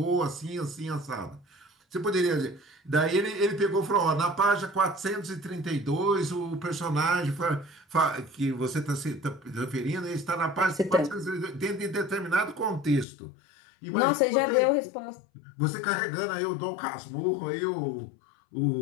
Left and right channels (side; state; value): right; drops out; at 13.1 s